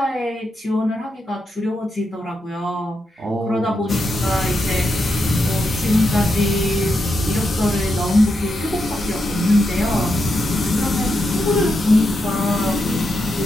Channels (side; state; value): both; normal; correlation 0.84